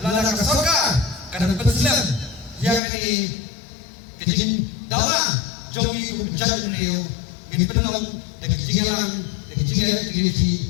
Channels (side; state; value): right; drops out; at 2.8 s